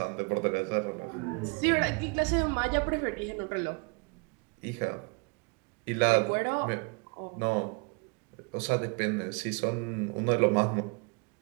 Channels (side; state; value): left; quieter; 33.2 dB